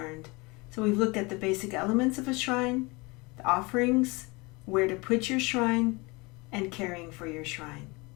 So we've looked at the basic elements of a shrine, the offerings, where to put your shrine, and caring for your shrine.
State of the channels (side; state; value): right; quieter; 25.9 dB